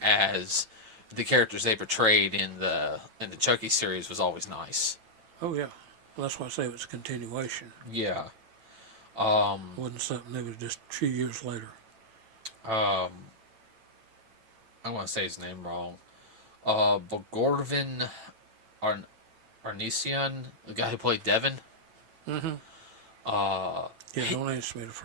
as the characters they portrayed in the Chucky series was always nice. Oh, yeah. Well, that's why I say it was a continuation. Yeah. It wasn't something that was just a few years later. Um, I want to say his name wrong. Bogorvin Arn- Arnesian, the guy who played Devin. Mm-hmm. Uh, Yeah, he, don't ask me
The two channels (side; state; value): left; late; 9.0 ms